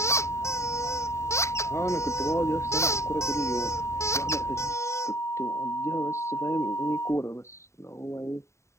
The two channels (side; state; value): right; late; 0.14 ms